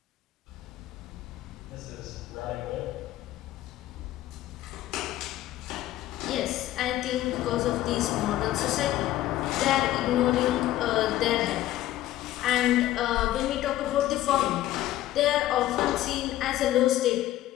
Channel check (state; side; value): quieter; right; 14.4 dB